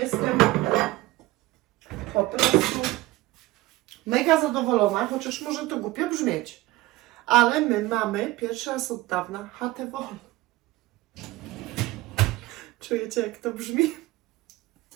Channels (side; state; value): left; quieter; 18.7 dB